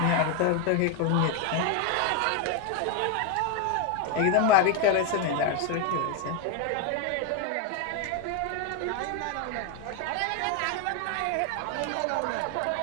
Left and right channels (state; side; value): different; both; correlation 0.01